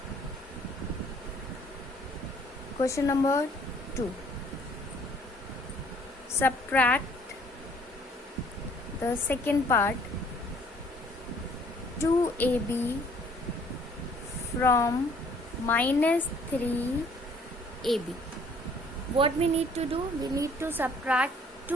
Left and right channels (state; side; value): normal; both; correlation 0.59